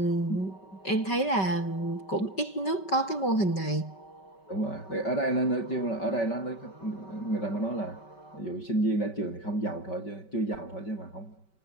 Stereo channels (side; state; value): right; late; 5.2 ms